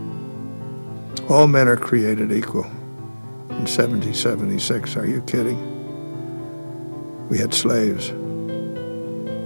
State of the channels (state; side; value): inverted; both; correlation -1.00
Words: All men are created equal. In 1776, are you kidding? We had slaves.